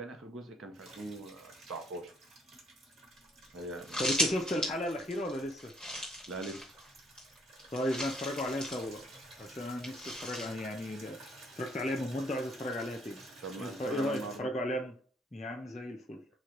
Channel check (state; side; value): normal; both; correlation 0.65